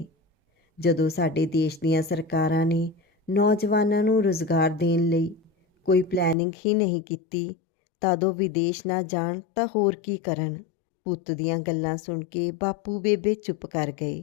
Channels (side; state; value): right; drops out; at 6.4 s